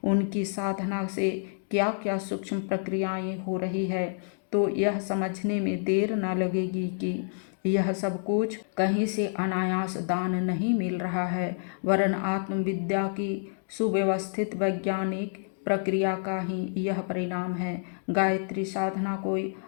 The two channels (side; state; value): right; silent; digital silence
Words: उनकी साधना से क्या क्या सूक्ष्म प्रक्रियाएं हो रही है, तो यह समझने में देर न लगेगी कि यह सब कुछ कहीं से अनायास दान नहीं मिल रहा है, वरन आत्मविद्या की सुव्यवस्थित वैज्ञानिक प्रक्रिया का ही यह परिणाम है। गायत्री साधना कोई